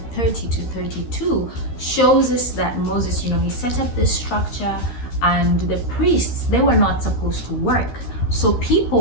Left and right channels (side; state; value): right; late; 13 ms